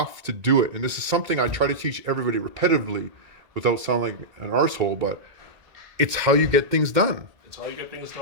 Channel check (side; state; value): left; late; 2.1 ms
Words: to do it. And this is something I try to teach everybody repetitively without sounding like an arsehole, but it's how you get things done. It's how you get things